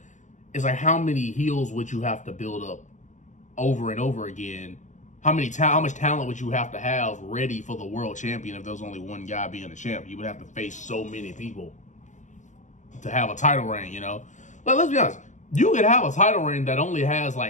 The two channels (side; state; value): right; late; 0.35 ms